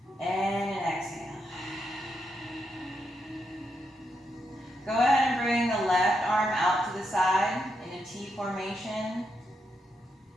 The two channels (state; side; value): normal; both; correlation 0.82